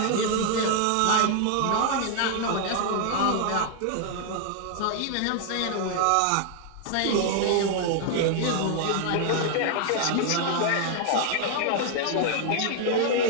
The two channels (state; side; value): different; both; correlation 0.00